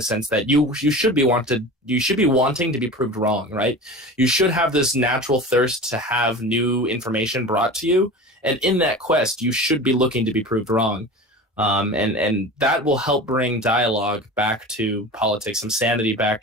sense that you should be wanting to be proved wrong, right? You should have this natural thirst to have new information brought to you, and in that quest, you should be looking to be proved wrong. And that will help bring dialogue back to politics, some sanity back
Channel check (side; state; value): both; normal; correlation 0.34